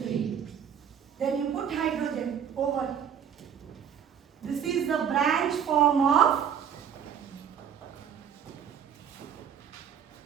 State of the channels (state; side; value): quieter; left; 8.2 dB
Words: Then you put hydrogen over. This is the branch form of.